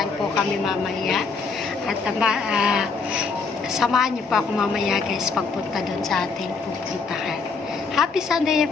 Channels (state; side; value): quieter; right; 4.7 dB